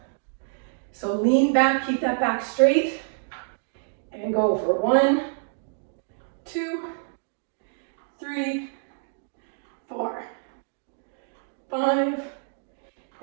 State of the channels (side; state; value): left; silent; digital silence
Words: So lean back, keep that back straight, and go for 1, 2, 3, 4, 5,